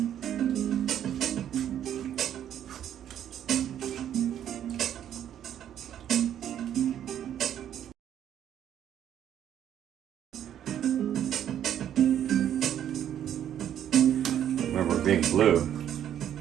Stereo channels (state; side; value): quieter; left; 10.3 dB